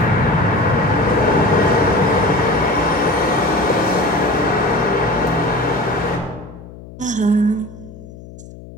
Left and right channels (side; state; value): left; noise; hum, 17 dB below the sound